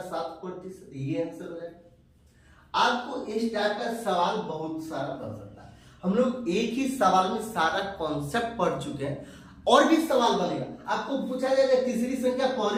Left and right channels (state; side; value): identical; both; correlation 1.00